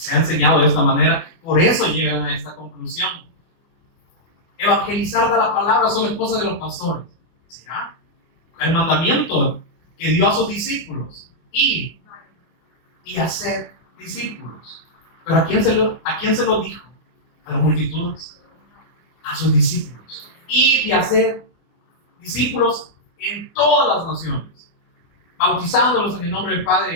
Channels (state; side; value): late; right; 24 ms